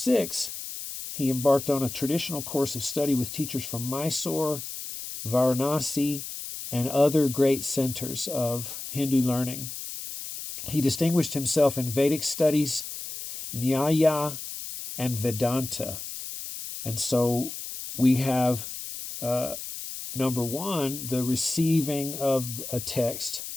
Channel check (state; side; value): noise; left; hiss, 8 dB below the sound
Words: he embarked on a traditional course of study with teachers from Mysore, Varanasi, and other great centers of Hindu learning. He distinguished himself in Vedic studies, Nyaya, and Vedanta. And so we have, number one, the receiving of a text